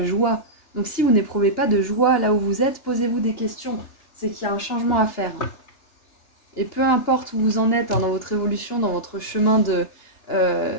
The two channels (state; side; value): late; right; 3.3 ms